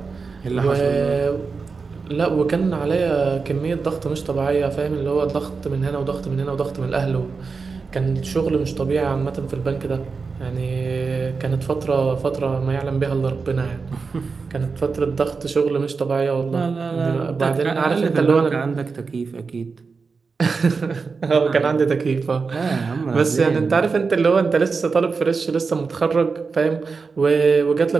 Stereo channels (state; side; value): quieter; left; 4.7 dB